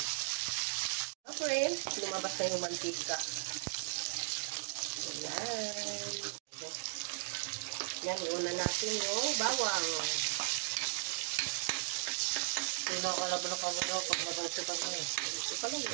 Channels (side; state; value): left; silent; digital silence